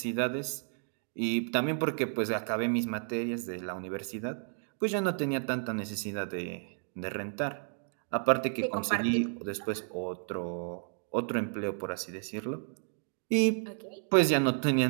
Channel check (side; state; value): left; silent; 55 dB below the other